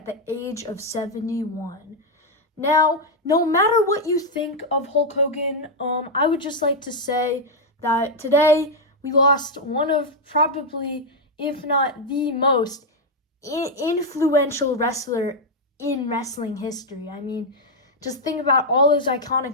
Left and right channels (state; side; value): normal; both; correlation 0.01